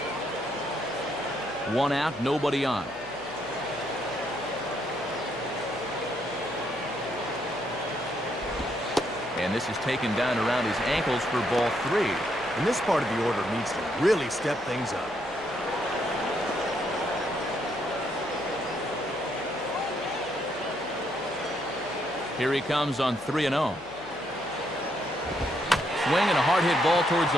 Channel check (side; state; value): left; noise; hum, 21 dB below the sound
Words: One out, nobody on. And this is taken down around his ankles for ball 3. And this part of the order needs to really step things up. Here he comes on 3-0. Swing and a hard hit ball towards